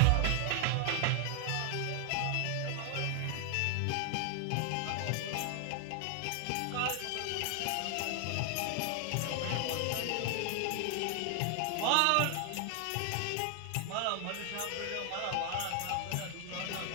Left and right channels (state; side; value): different; both; correlation 0.00